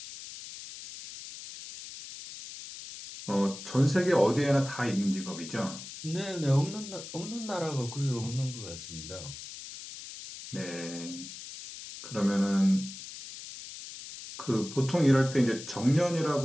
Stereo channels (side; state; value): left; noise; hiss, 12 dB below the sound